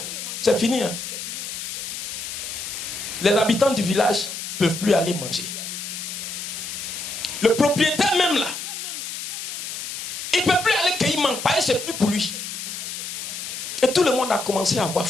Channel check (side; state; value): left; noise; hiss, 6 dB below the sound